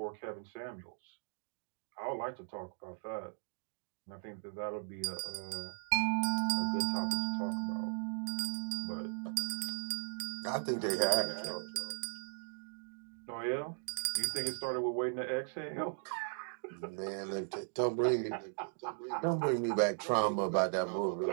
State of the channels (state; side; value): silent; left; digital silence